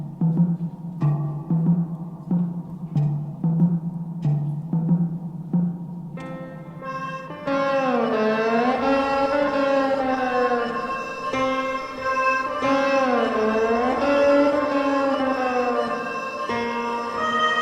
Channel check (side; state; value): both; identical; correlation 1.00